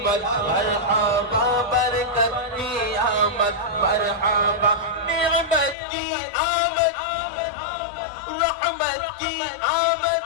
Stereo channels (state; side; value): drops out; right; at 5.8 s